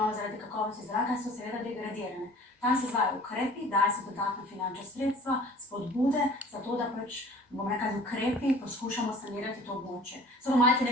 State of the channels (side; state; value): both; normal; correlation 0.47